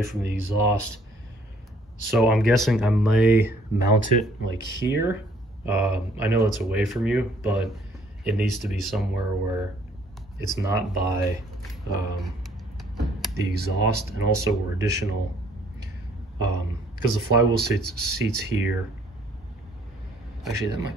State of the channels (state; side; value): normal; both; correlation 0.62